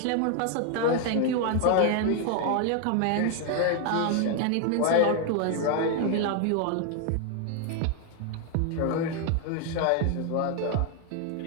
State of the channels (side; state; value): both; different; correlation 0.01